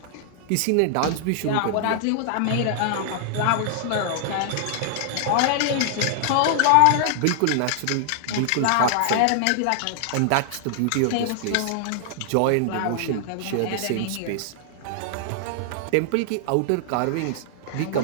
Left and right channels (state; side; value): different; both; correlation 0.00